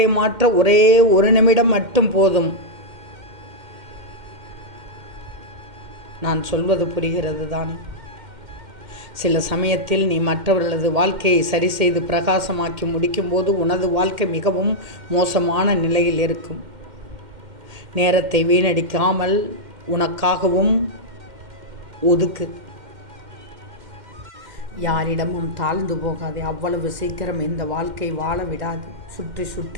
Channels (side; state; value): left; late; 2.1 ms